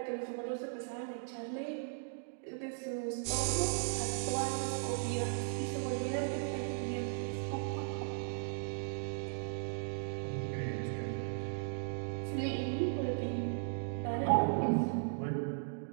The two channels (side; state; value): left; silent; digital silence